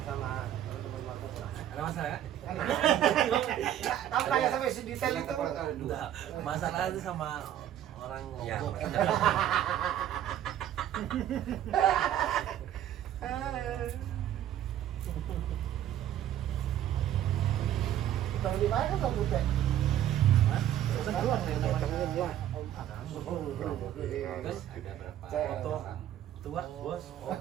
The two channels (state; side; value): quieter; left; 11.4 dB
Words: sama teman-teman Marta? Ada masalah kan? Kamu tanya sampai sedetail itu. Enggak. Masalah itu sama orang Ya, Lombok. Tahu di mana kamu teh? Terus Ada berapa foto orang? tua, bos.